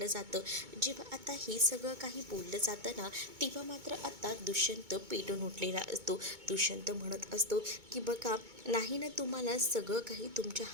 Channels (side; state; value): left; late; 2.2 ms